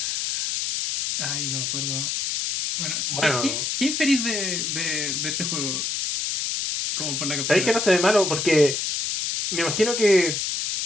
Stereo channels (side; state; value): left; noise; hiss, 1 dB below the sound